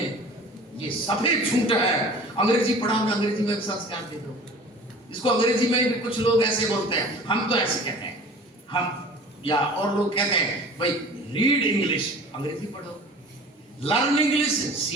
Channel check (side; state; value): both; normal; correlation 0.43